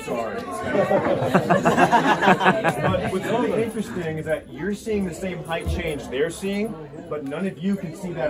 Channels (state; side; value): identical; both; correlation 1.00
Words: sorry. But what's really interesting is that you're seeing the same height change they're seeing, but none of you can see